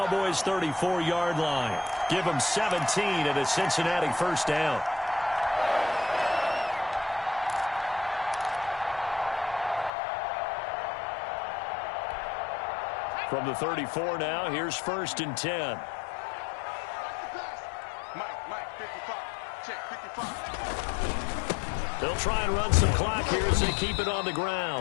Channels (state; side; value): drops out; right; at 9.9 s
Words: 34-yard line. Give him 17 at a Cincinnati first down. From the 34 now, here's 1st and 10. Mike, 55. Check, 55. They'll try and run some clock here as they keep it on the